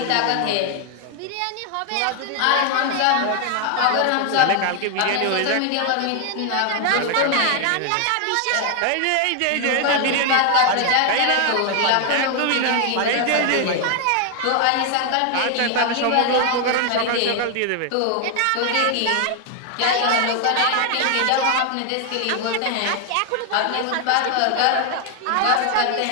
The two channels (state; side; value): different; both; correlation 0.00